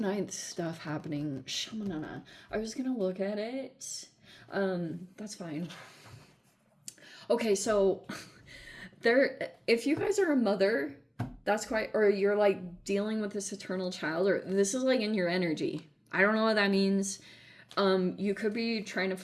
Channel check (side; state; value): both; identical; correlation 1.00